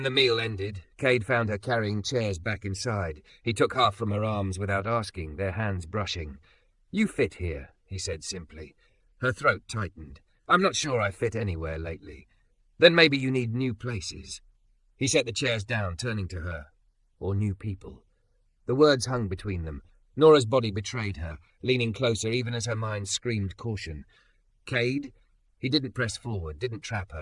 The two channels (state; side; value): identical; both; correlation 1.00